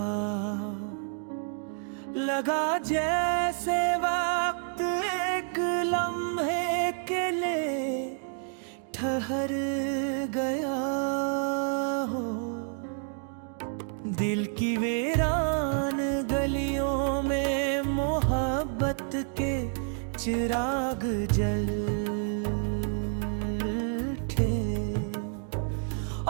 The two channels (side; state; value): left; silent; 58 dB below the other